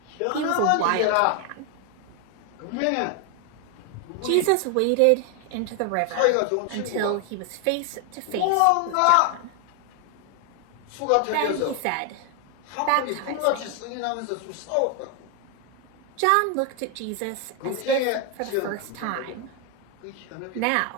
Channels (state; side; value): different; both; correlation 0.01